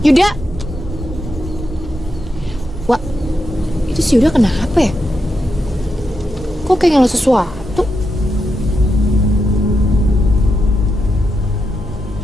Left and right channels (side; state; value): both; normal; correlation 0.85